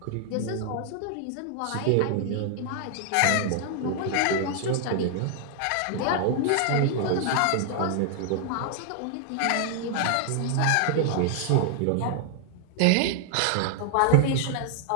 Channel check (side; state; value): both; different; correlation 0.00